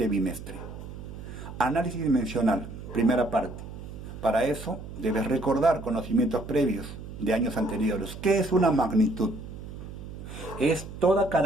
bimestre. Análisis dimensional, primera parte. Para eso debes recordar conocimientos previos de años anteriores. ¿Qué es una magnitud? Es toda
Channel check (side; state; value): right; noise; hum, 11 dB below the sound